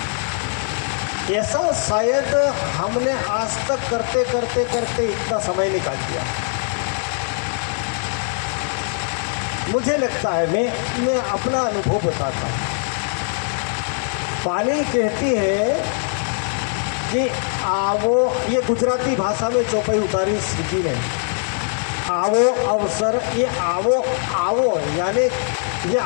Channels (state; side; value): silent; right; 65 dB below the other